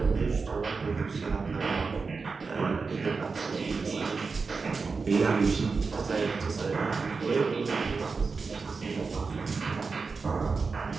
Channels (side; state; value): left; quieter; 4.6 dB